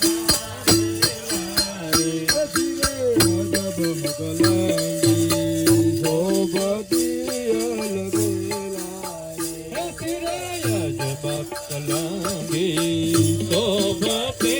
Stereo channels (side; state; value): both; identical; correlation 1.00